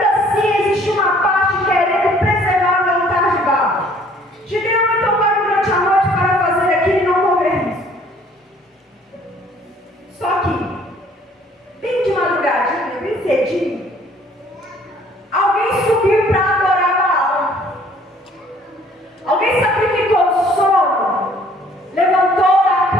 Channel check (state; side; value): normal; both; correlation 0.58